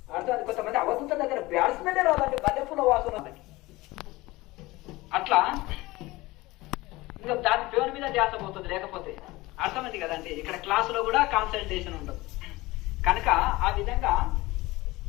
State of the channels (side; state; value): right; quieter; 20.2 dB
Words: అర్థం. కొంతమంది అవధూత దగ్గర బ్యాట్స్మెన్ రాదండి, మల్లెపూల వాసన అట్లా. ఇంకా దాని పేరు మీద ధ్యాస పోతుంది, లేకపోతే అర్థమైంది కదండి. ఇక్కడ క్లాసులో కూడా కాన్సన్ట్రేషన్ ఉండదు కనుక ఆ విధంగా